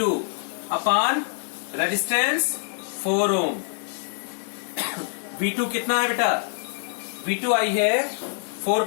अपॉन रेजिस्टेंस 4 ओम। V2 कितना है बेटा? V2 आई है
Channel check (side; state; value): right; silent; digital silence